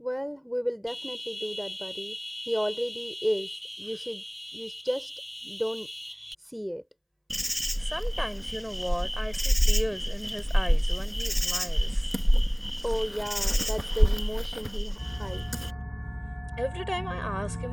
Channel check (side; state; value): both; identical; correlation 1.00